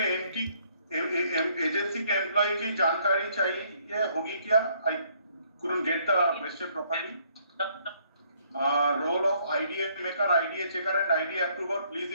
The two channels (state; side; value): inverted; both; correlation -0.66